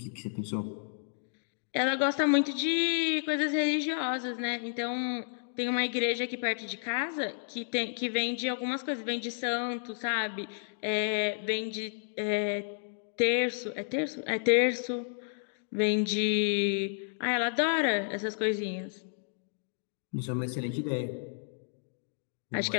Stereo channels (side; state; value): right; silent; digital silence